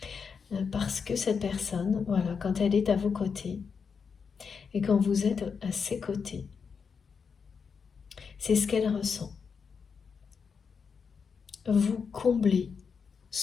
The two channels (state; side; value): quieter; right; 5.9 dB